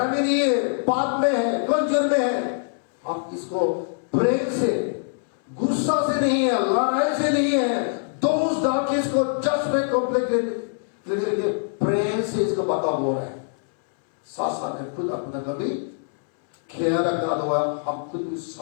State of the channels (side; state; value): right; silent; 63 dB below the other